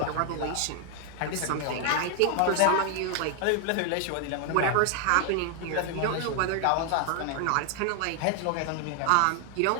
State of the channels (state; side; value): different; both; correlation 0.00